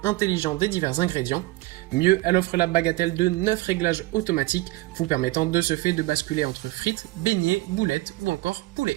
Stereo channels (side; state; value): left; quieter; 20.0 dB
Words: intelligent des divers ingrédients. Mieux, elle offre la bagatelle de 9 réglages automatiques, vous permettant de ce fait de basculer entre frites, beignets, boulettes ou encore poulet.